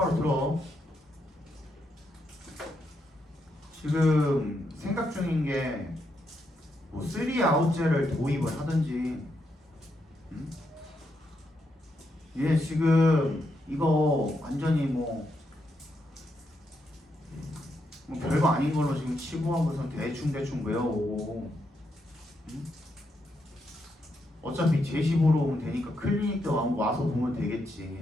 들어. 지금 생각 중인 게 뭐 3아웃제를 도입을 하든지 얘 지금 이거 완전히 뭐 별거 아닌 걸로 지금 치부하고서 대충 외워오고 어차피 제시 보러 오면 되니까 클리닉 때 와서 보면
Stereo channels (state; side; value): normal; both; correlation 0.81